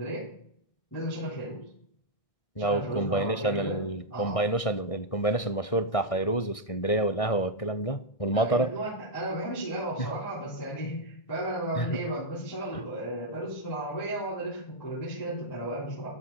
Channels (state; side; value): late; right; 1.6 ms